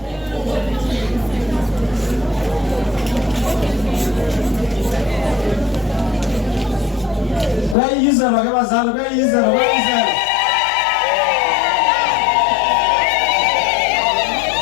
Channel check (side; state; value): right; drops out; at 7.8 s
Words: Bayizela ke bazali bayizela.